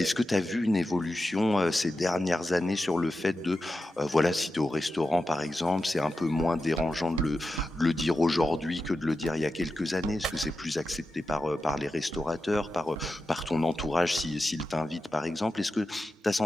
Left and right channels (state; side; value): normal; both; correlation 0.91